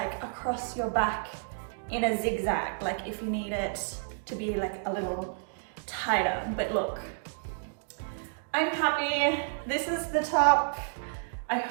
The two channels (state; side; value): silent; left; digital silence